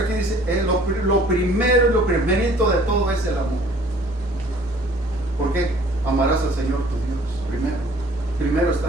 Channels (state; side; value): normal; both; correlation 0.54